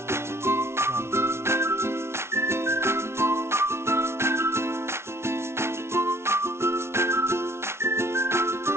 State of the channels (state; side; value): late; left; 0.12 ms